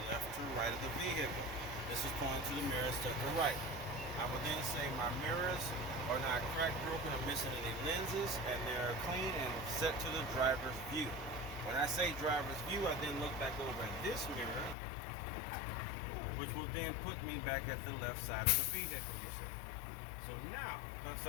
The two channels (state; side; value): drops out; right; at 14.8 s